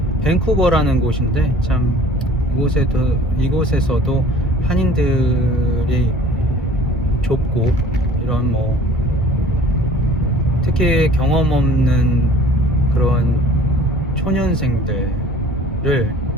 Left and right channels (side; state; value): both; normal; correlation 0.49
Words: 밴쿠버라는 곳인데 참 이곳에서도 한인들이 좁고, 이런 뭐 특히 경험 없는 그런 초년생들을